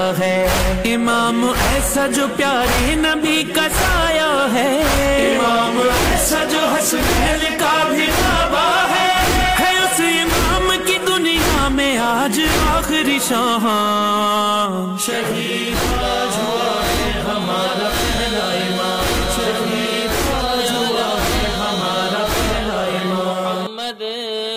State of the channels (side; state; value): both; identical; correlation 1.00